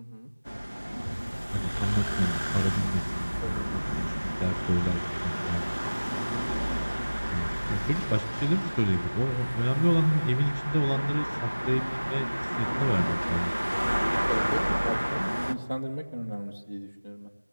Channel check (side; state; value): both; inverted; correlation -1.00